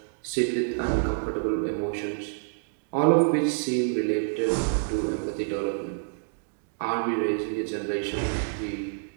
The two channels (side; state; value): left; silent; digital silence